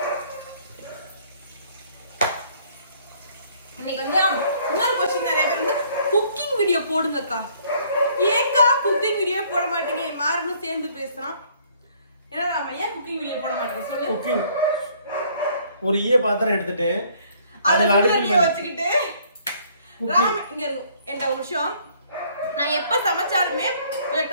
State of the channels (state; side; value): inverted; both; correlation -0.61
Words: இன்னைக்கு வந்து இன்னொரு கொஸ்டின் நிறைய பேர் வந்து குக்கிங் வீடியோ போடுங்கக்கா. ஏன்க்கா குக்கிங் வீடியோ போட மாட்டீங்க? மாறனும் சேர்ந்து பேசுறான். ஏன்னா நாம ஏன் குக்கிங் வீடியோ போட மாட்டேன் சொல்லு. குக்கிங் ஒரு பாத்திரம் எடுத்துட்டு அதுல அடுப்புல வச்சுக்கிட்டு ராம் இங்க இருக்கு. என்ன ஒரு விஷயம், நான் எப்ப சமைச்சாலுமே கொஞ்சம்